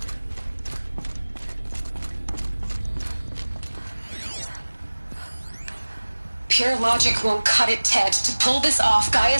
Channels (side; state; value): both; inverted; correlation -1.00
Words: Pure logic won't cut it, Ted. To pull this off,